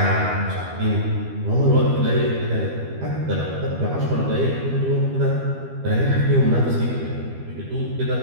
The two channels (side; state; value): left; late; 12 ms